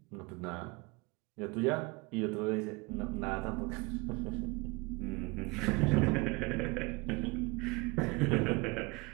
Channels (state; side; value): quieter; left; 26.1 dB